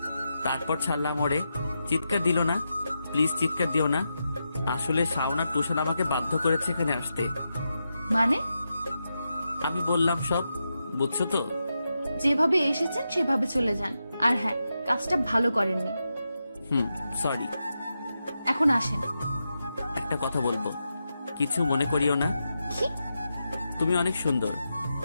তারপর ছাড়লাম ওরে। চিৎকার দিল না। প্লিজ চিৎকার দিও না। আসলে শাওন আর তুষার আমাকে বাধ্য করেছে এখানে আসতে। মানে? আমি বললাম সব, বুঝছো তো? যেভাবে এসেছেন সেভাবে চলে যান। আর হ্যাঁ, কাজটা ভালো করেননি। সরি। এখন আসেন। একটা কথা বলবো, কিছু মনে করিও না। কি? তুমি অনেক সুন্দর,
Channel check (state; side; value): inverted; both; correlation -0.87